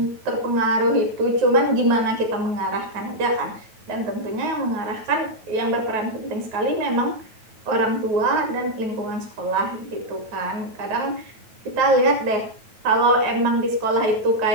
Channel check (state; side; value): late; left; 9.2 ms